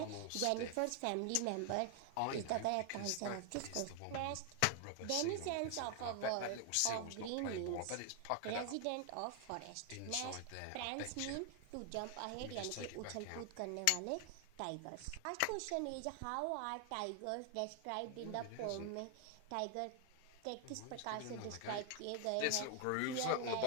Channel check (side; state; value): both; different; correlation 0.00